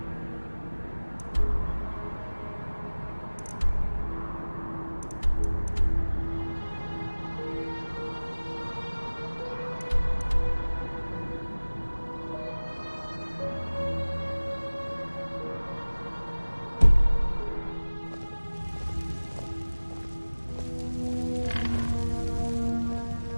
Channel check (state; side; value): inverted; both; correlation -1.00